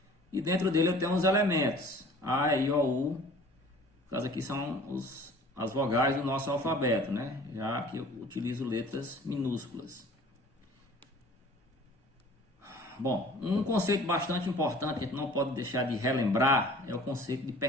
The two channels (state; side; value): normal; both; correlation 0.48